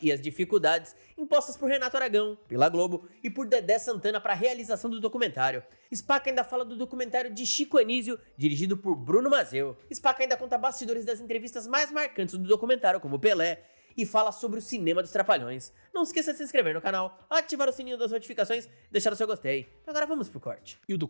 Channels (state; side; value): inverted; both; correlation -1.00